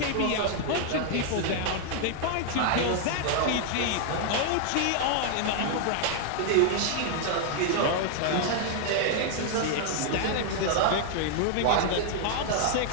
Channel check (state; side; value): different; both; correlation 0.00